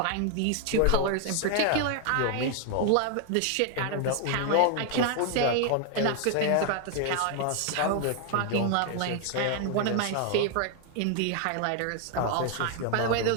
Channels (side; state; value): both; different; correlation 0.00